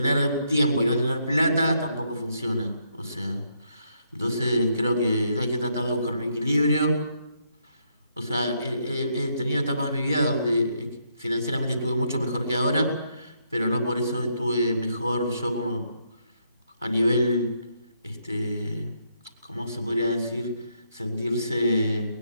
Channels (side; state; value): both; inverted; correlation -0.75